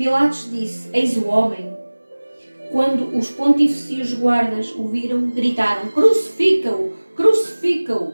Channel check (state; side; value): inverted; both; correlation -1.00